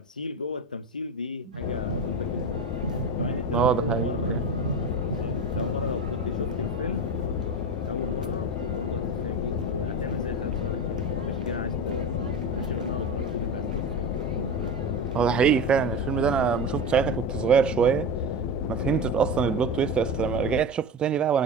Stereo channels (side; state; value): both; normal; correlation 0.23